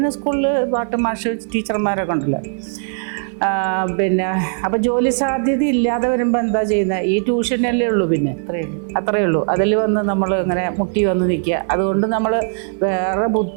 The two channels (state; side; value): silent; left; 56 dB below the other